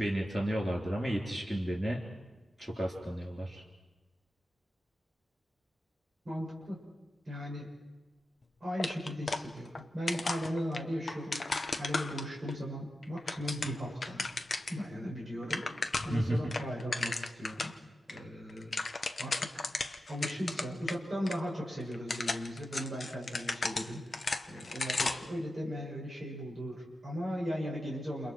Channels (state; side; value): normal; both; correlation 0.91